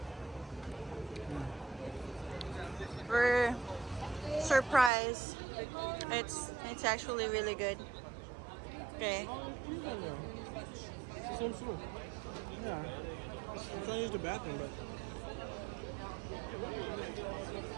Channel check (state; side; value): drops out; left; at 4.9 s